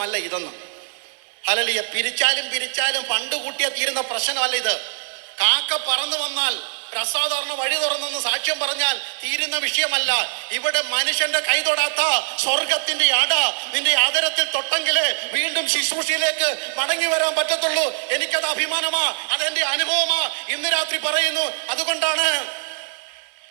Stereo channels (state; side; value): silent; left; 60 dB below the other